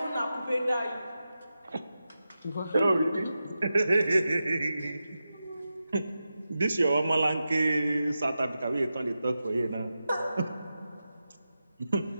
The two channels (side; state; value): both; inverted; correlation -0.91